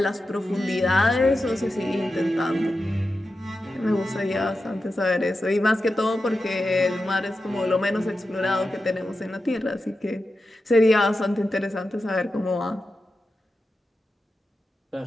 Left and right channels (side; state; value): both; normal; correlation 0.91